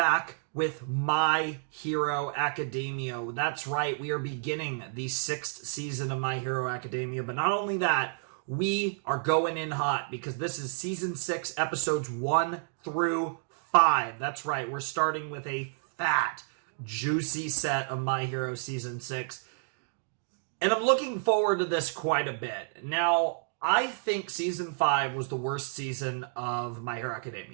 with My Hero Academia. That's right, we are beginning the 6th season of My Hero Academia, but not only that, we are going in hot because this is season 6, episodes 1 through 5. That's right, we're starting with a fat, juicy set of My Hero season 6. And I'm looking forward to this quite a bit. Now, I think season 5 was the worst season of My Hero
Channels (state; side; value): silent; left; digital silence